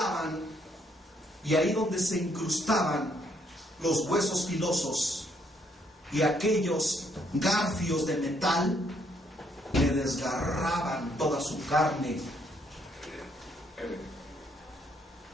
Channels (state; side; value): normal; both; correlation 0.70